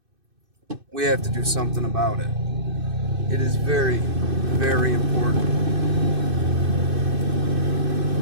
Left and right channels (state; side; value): late; left; 2.6 ms